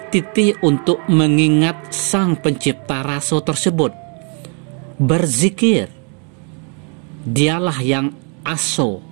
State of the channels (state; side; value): quieter; left; 38.6 dB